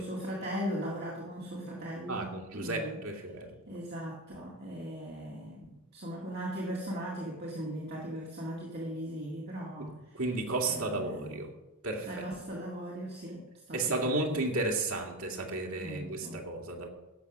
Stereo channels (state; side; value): normal; both; correlation 0.22